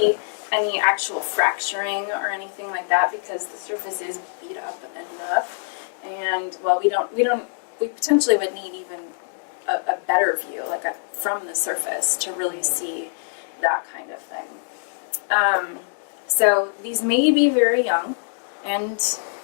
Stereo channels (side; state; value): right; silent; digital silence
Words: any actual fracturing or anything like that because the surface is beat up enough. And well, we potentially would need even a better view, from the surface, to really see that kind of thing. So these may be very young, and